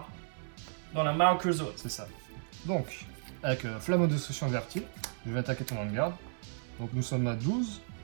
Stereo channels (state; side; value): silent; left; digital silence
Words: dans la marker zone. C'est ça. Donc, avec Flamme de Destruction Verti, je vais attaquer ton Vanguard. Donc nous sommes à 12,